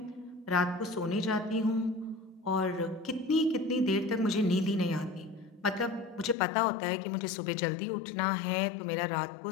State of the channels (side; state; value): right; drops out; at 6.4 s